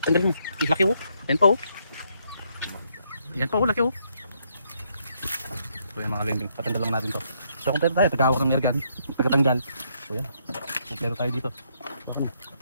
Tanggalin mo. Laki oh. Yan pa oh. Yan pa oh. Laki oh. So yan mga kabeng-beng. Patanggal lang natin to. So kompleto tayo. Tagawak ng airgun. Tagatanggal. So yan. Kompleto tayo dito.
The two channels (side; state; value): both; inverted; correlation -0.73